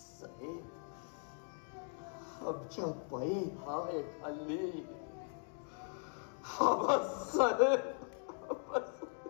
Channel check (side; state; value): right; silent; 51 dB below the other